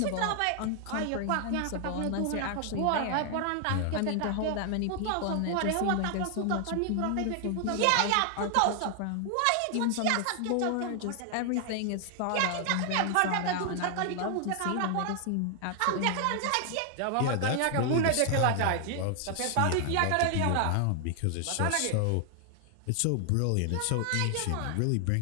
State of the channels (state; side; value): different; both; correlation 0.00